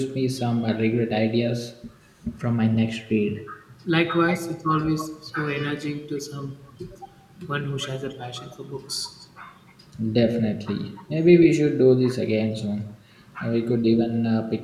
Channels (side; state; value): both; identical; correlation 1.00